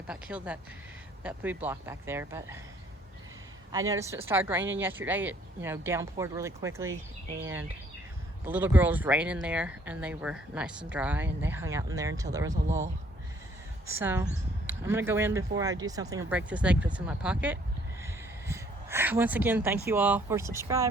killed that food block back there. But I noticed it started raining yesterday. It downpoured really quickly, and the little girls ran in there, and they were nice and dry, and they hung out in there until there was a lull. So I'm gonna go in before I do something and break this egg that's in my pocket. Once again, thank you all for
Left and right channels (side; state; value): both; normal; correlation 0.62